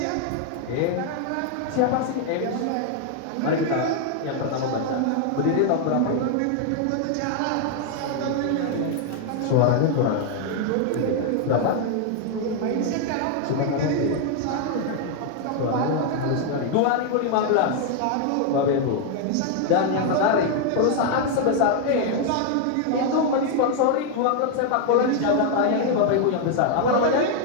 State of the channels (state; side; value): different; both; correlation 0.00